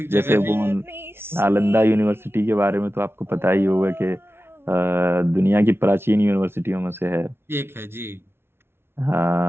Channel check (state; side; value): late; left; 0.12 ms